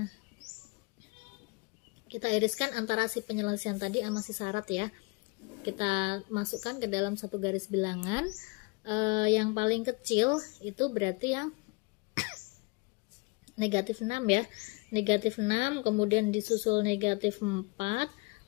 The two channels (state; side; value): quieter; right; 29.7 dB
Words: Kita iriskan antara si penyelesaian tadi sama si syarat ya. Kita masukkan ke dalam satu garis bilangan. Yang paling kecil itu berarti yang negatif 6 ya. Negatif 6, kemudian disusul negatif 4,